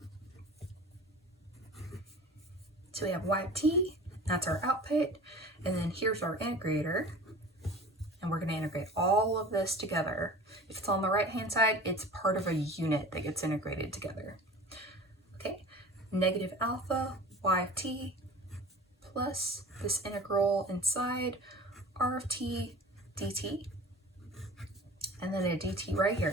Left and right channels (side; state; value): both; normal; correlation 0.40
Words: So we have y of t, that's our output, and then here's our integrator, and we're going to integrate all of this together. If it's on the right hand side, it's part of a unit that gets integrated together. Okay, negative alpha y of t plus this integral inside r of t dt, and then a dt right